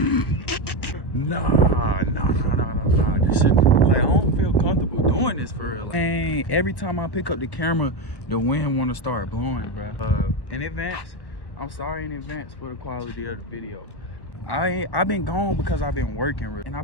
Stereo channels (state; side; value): late; right; 1.1 ms